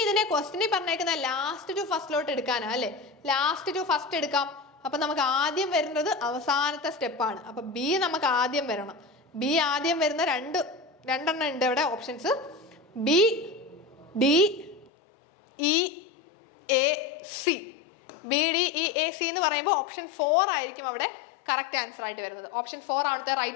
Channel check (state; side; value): drops out; right; at 14.9 s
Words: ഇതിനെ ക്വസ്റ്റിനിൽ പറഞ്ഞേക്കുന്ന ലാസ്റ്റ് ടു ഫസ്റ്റിലോട്ട് എടുക്കാനാ അല്ലേ? ലാസ്റ്റ് ടു ഫസ്റ്റ് എടുക്കാം. അപ്പൊ നമുക്ക് ആദ്യം വരുന്നത് അവസാനത്തെ സ്റ്റെപ്പാണ്. അപ്പൊ ബി നമുക്ക് ആദ്യം വരണം. ബി ആദ്യം വരുന്ന രണ്ടെണ്ണം ഉണ്ട് ഇവിടെ options. B, D, E, A, C. B, D, E, A, C എന്ന് പറയുമ്പോൾ ഓപ്ഷൻ 4 ആയിരിക്കും അവിടെ കറക്റ്റ് ആൻസർ ആയിട്ട് വരുന്നത്. ഓപ്ഷൻ 4 ആണത്തെ